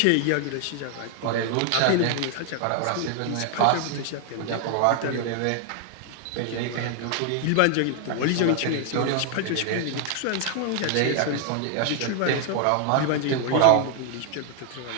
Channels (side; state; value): both; different; correlation 0.00